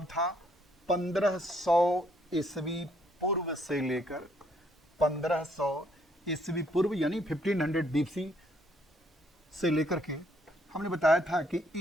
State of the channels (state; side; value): normal; both; correlation 0.68